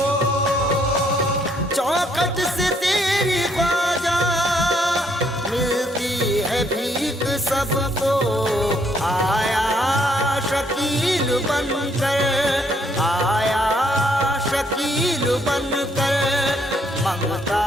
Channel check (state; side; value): normal; both; correlation 0.69